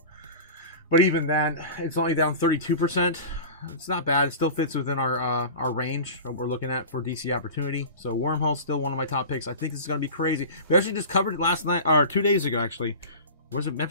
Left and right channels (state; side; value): inverted; both; correlation -0.34